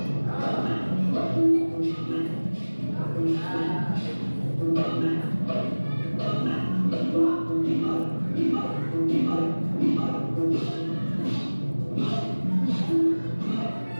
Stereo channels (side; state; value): both; inverted; correlation -1.00